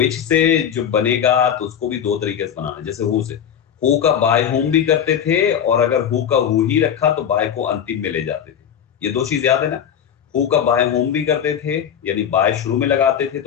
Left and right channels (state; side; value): quieter; right; 8.8 dB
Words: से जो बनेगा तो उसको भी दो तरीके से बनाना है। जैसे हु से, हु का बाय होम भी करते थे, और अगर हु का हु ही रखा तो बाय को अंतिम में ले जाते थे। ये दो चीज याद है ना। हु का बाय होम भी करते थे, यानी बाय शुरू में लगाते थे